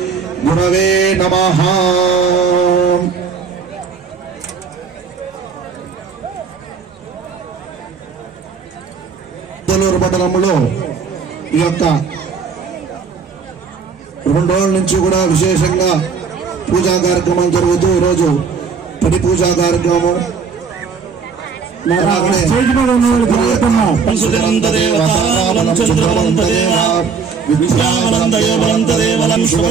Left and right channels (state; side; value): quieter; left; 5.6 dB